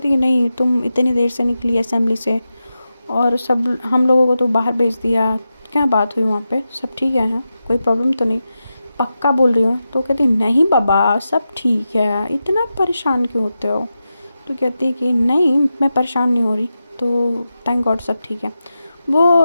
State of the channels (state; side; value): inverted; both; correlation -0.90